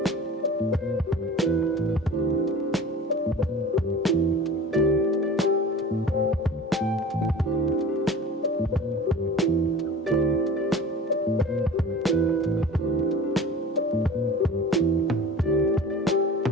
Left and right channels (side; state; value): both; normal; correlation 0.39